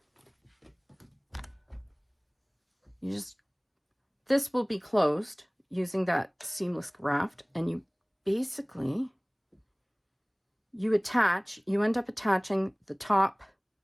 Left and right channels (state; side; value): identical; both; correlation 1.00